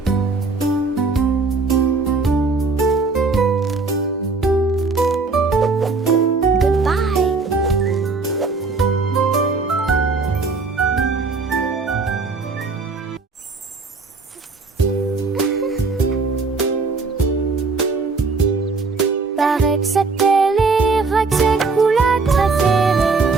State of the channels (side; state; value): left; quieter; 4.2 dB